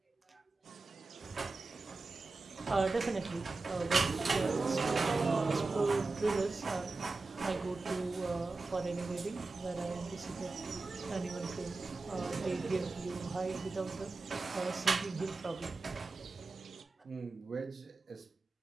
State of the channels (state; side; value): quieter; left; 3.6 dB